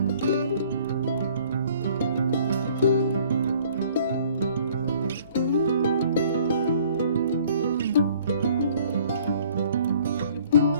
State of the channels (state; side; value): inverted; both; correlation -0.56